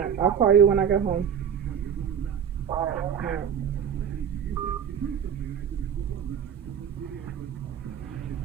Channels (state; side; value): quieter; left; 8.1 dB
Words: I'll call you when I get home. Alright. Alright.